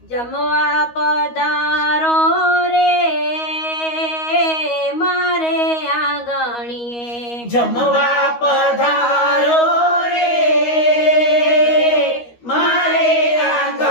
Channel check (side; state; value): right; late; 13 ms